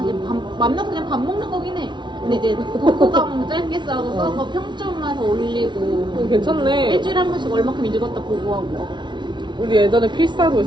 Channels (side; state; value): left; late; 0.22 ms